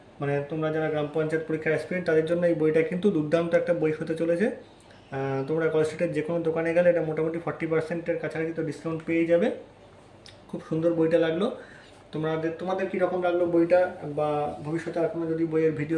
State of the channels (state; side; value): identical; both; correlation 1.00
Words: মানে তোমরা যারা গ্রাম পঞ্চায়েত পরীক্ষার অ্যাসপিরেন্ট, তাদের জন্য এই বইটা কিন্তু দুর্দান্ত একটা বই হতে চলেছে। তোমরা কলেজ স্ট্রিটের যে কোনো দোকানে গেলে এটা মোটামুটি 40%-এর কাছাকাছি তো ডিসকাউন্ট পেয়ে যাবে। খুব সুন্দর বইটা লাগলো। তোমাদের কীরকম লাগলো বইটা, বা ভবিষ্যতে আর কোনো যদি বইয়ের